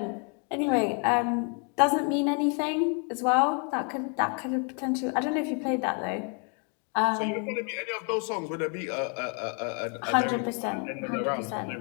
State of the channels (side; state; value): right; quieter; 38.8 dB